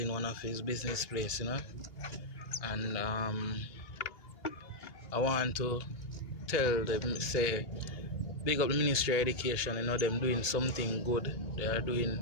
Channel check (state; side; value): late; right; 2.8 ms